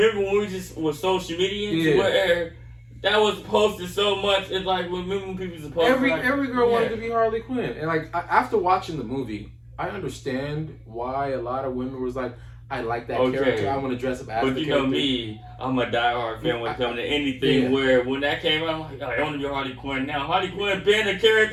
when we just was social media where that was posted so much. It's like remember when people supposed every girl wanted to be Harley Quinn, and like after watching the movie, I understand why a lot of women was like, I like that character. I want to dress up as the character. But you know me, I'm a diehard fan when it comes to anything where when that came out, I'm like, I want to be Harley Quinn now. Harley Quinn been a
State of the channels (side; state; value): both; identical; correlation 1.00